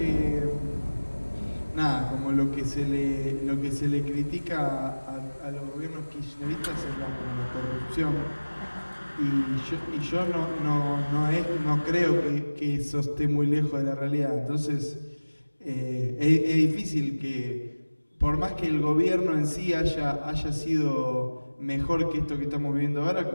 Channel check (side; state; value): both; inverted; correlation -1.00